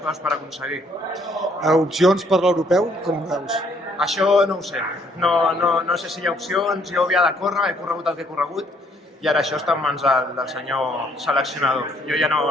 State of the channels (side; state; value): both; normal; correlation 0.66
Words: per aconseguir. Opcions per l'europeu, com ho veus? Això no ho sé, no sé si hi ha opcions, jo havia de córrer, he corregut el que he corregut i ara això està en mans del senyor seleccionador, jo ja no